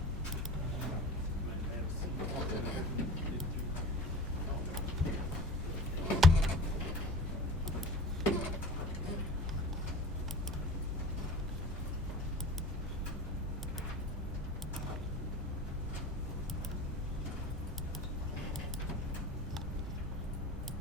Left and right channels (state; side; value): normal; both; correlation 0.37